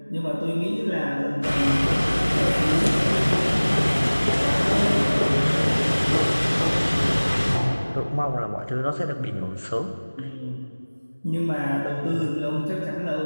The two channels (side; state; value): both; inverted; correlation -1.00